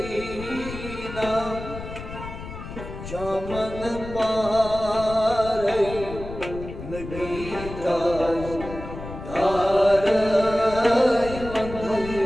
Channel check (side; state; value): left; noise; rumble, 11 dB below the sound